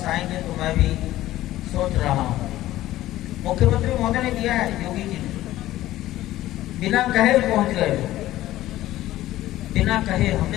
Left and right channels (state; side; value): quieter; right; 15.1 dB